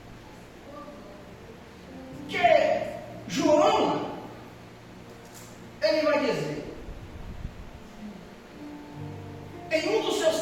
que João, ele vai dizer, em um dos seus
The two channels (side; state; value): both; identical; correlation 1.00